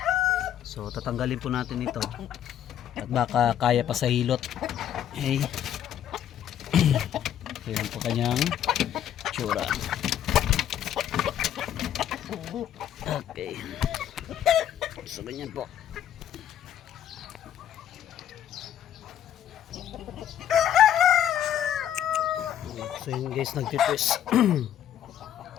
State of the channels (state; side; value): quieter; right; 10.4 dB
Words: So tatanggalin po natin ito at baka kaya pa sa hilot. Okay. Ayan po kanyang tsura. Okay. So ganyan po. So yun guys, nagtitwist.